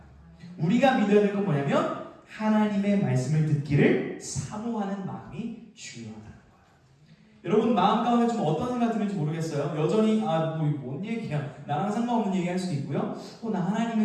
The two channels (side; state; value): both; identical; correlation 1.00